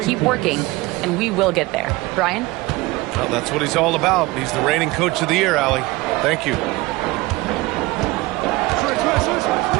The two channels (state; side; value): quieter; left; 20.9 dB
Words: keep working, and we will get there." Brian? Well, that's what he's all about. He's the reigning Coach of the Year, Allie. Thank you.